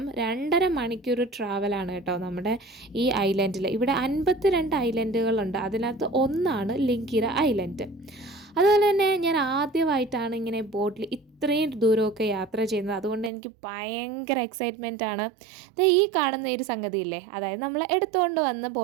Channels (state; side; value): drops out; left; at 13.3 s